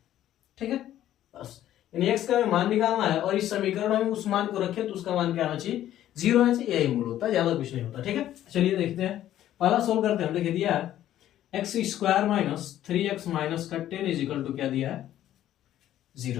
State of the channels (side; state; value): right; quieter; 12.4 dB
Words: ठीक है, बस यानी x का मान निकालना है और इस समीकरण में उस मान को रखें तो उसका मान क्या आना चाहिए, 0 आना चाहिए। यही मूल होता है, ज्यादा कुछ नहीं होता। ठीक है, चलिए देखते हैं, पहला सोल्व करते हैं। देखिए दिया है x square minus 3x minus का 10 इज इक्वल टू क्या दिया है,